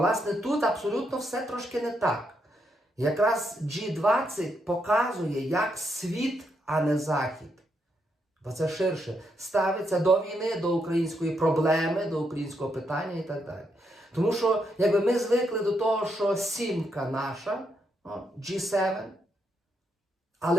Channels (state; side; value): normal; both; correlation 0.79